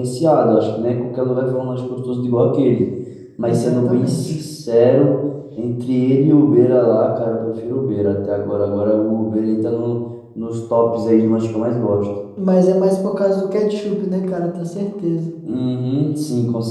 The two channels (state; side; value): identical; both; correlation 1.00